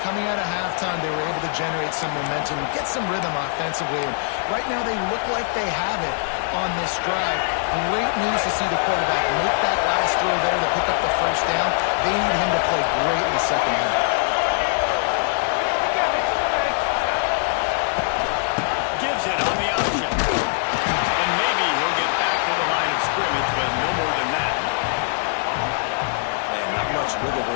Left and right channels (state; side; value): silent; right; 61 dB below the other